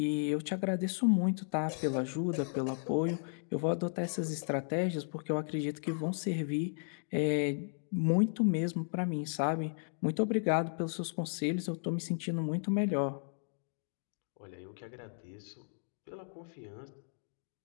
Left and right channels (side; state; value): right; silent; digital silence